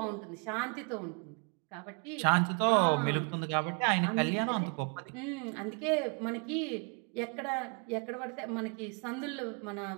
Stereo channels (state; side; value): quieter; left; 37.3 dB